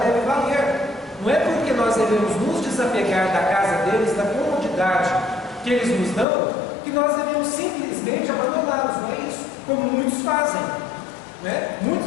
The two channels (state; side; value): drops out; right; at 6.2 s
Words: deve valer. Não é porque nós devemos nos desapegar da casa deles, da comodidade que eles nos dão, que nós devemos simplesmente abandoná-los. Não é isso? Como muitos fazem.